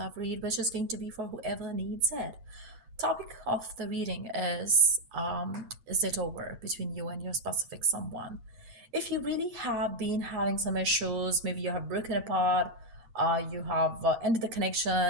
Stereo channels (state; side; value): late; left; 8.0 ms